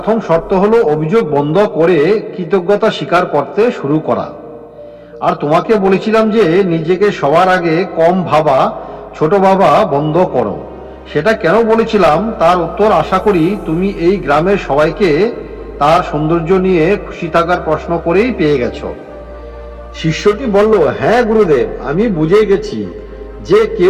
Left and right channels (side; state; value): both; identical; correlation 1.00